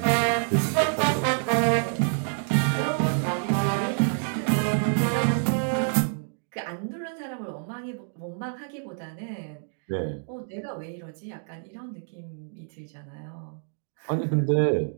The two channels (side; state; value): left; silent; digital silence